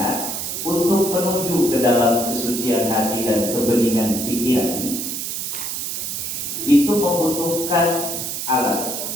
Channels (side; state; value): right; noise; hiss, 4 dB below the sound